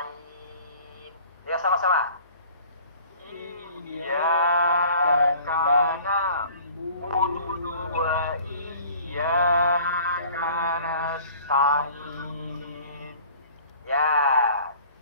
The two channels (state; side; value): inverted; both; correlation -0.49